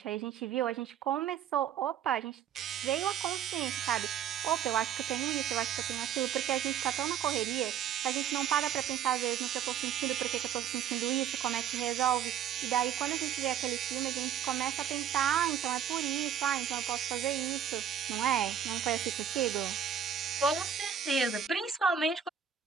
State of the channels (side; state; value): left; quieter; 8.9 dB